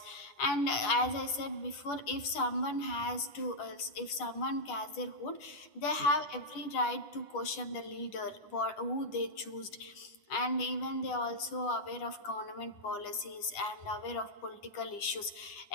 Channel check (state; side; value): late; right; 9.7 ms